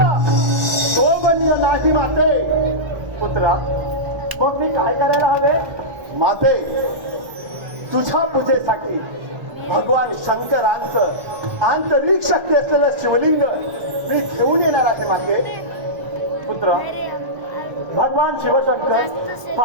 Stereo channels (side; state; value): left; late; 1.5 ms